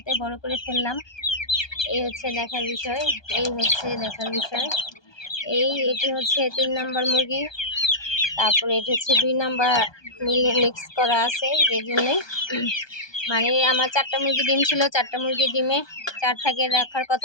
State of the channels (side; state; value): right; late; 1.2 ms